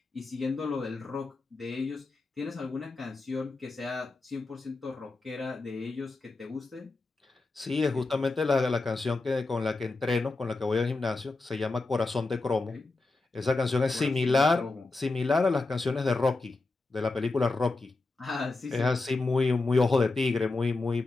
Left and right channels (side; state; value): right; quieter; 3.4 dB